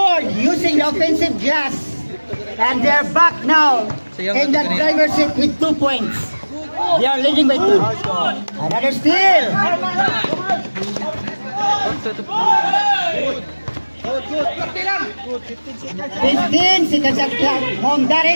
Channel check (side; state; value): both; inverted; correlation -1.00